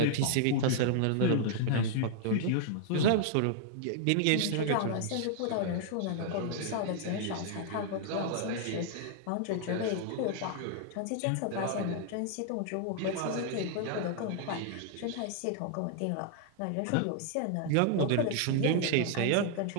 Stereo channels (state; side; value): different; both; correlation 0.00